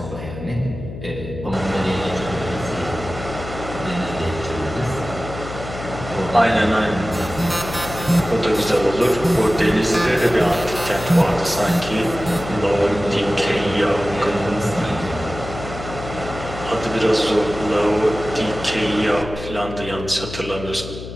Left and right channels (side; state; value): left; noise; hum, 10 dB below the sound